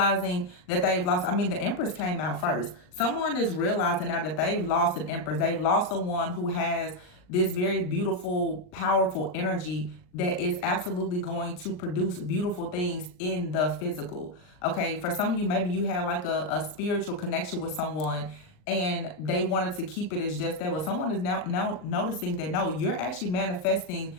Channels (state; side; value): late; right; 39 ms